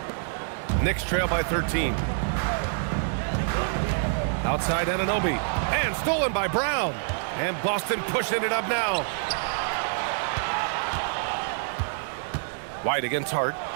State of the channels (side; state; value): left; silent; 60 dB below the other